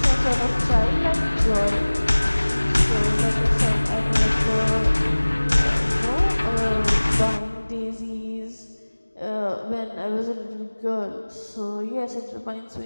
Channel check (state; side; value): inverted; both; correlation -1.00